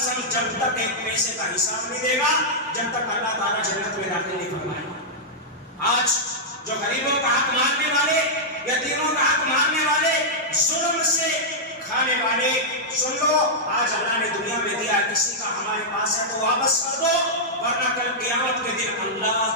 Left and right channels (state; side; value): normal; both; correlation -0.08